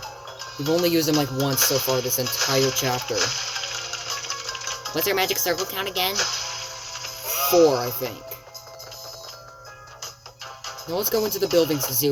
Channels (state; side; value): identical; both; correlation 1.00